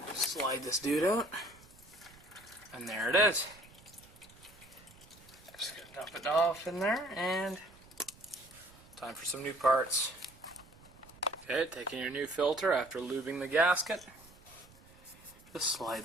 Slide this dude out, and there it is. Just gonna dump it off in there, and time for some new parts. Okay, taking your new filter after lubing the gasket. Just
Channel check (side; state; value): right; noise; rumble, 24 dB below the sound